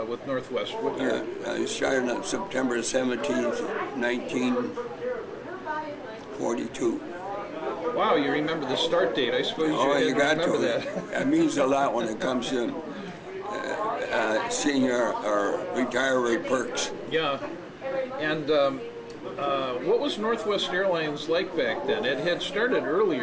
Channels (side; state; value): both; identical; correlation 1.00